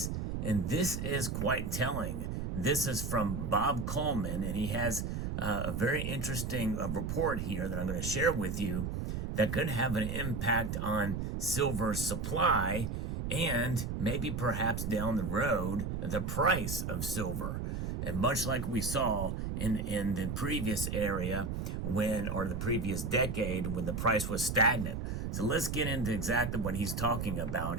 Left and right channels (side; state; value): right; noise; rumble, 3 dB below the sound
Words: And this is quite telling. This is from Bob Coleman, and he has a very interesting report here that I'm going to share with you that could have an impact on silver supply and maybe perhaps down the road, the price of silver. And much like we saw in the previous area or the previous decade when the price was stagnant. So let's get into exactly what he's talking about